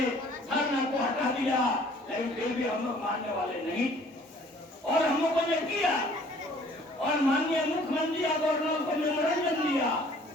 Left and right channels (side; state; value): both; normal; correlation 0.55